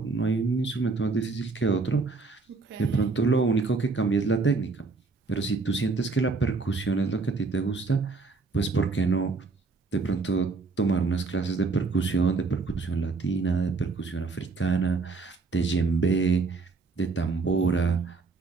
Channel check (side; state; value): left; quieter; 4.1 dB